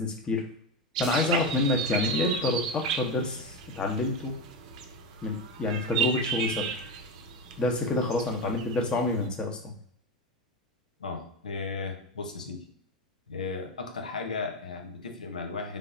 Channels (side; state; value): both; normal; correlation 0.15